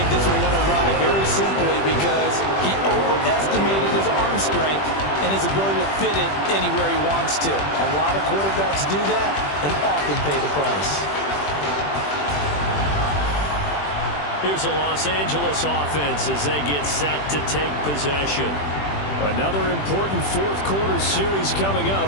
this one went awry very simply because he overestimated his arm strength and his ability to fit it anywhere he wants to. A lot of quarterbacks do that and often pay the price. Here's a Los Angeles offense as they get set to take possession. Another important fourth quarter series coming up.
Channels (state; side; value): late; right; 20 ms